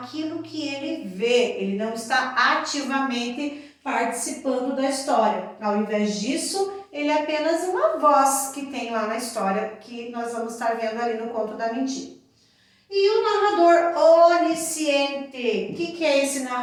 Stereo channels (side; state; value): both; identical; correlation 1.00